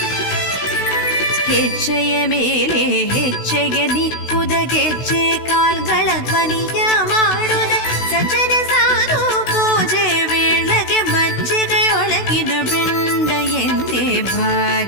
ಹೆಜ್ಜೆಯ ಮೇಲೆ ಹೆಜ್ಜೆಗೆ ನಿಕ್ಕುದ ಗೆಜ್ಜೆ ಕಾಲ್ಗಳ ಧ್ವನಿಯ ಮಾಡುದ ಸಜ್ಜನ ಸಾಧು ಪೂಜೆ ವೇಳೆಗೆ ಮಜ್ಜಿಗೆಯೊಳಗಿನ ಬೆಂಡ ಎಂತೆ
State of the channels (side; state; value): right; late; 16 ms